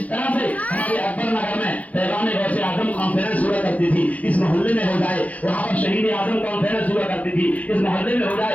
طرح سے ہمارے اکبر نگر میں پیغام غوث اعظم کانفرنس ہوا کرتی تھی، اس محلے میں ہو جائے، وہاں پر شہید اعظم کانفرنس ہوا کرتی تھی، اس محلے میں ہو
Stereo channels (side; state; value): right; late; 0.070 ms